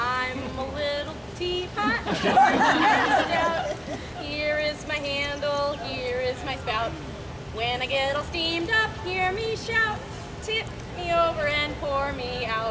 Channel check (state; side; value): identical; both; correlation 1.00